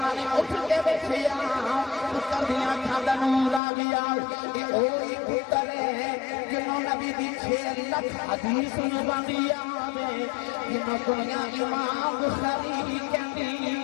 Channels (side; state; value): right; drops out; at 3.6 s